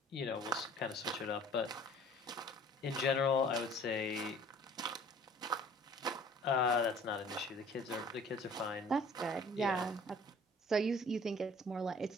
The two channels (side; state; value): both; normal; correlation 0.51